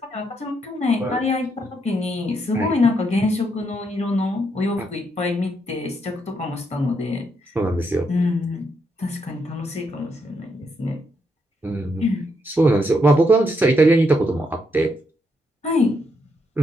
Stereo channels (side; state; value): both; normal; correlation 0.77